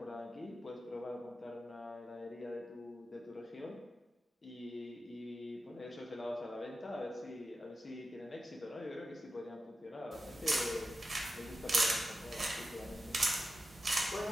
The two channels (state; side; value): normal; both; correlation 0.92